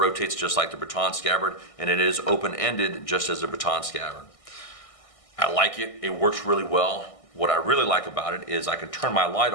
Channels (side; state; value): right; late; 1.6 ms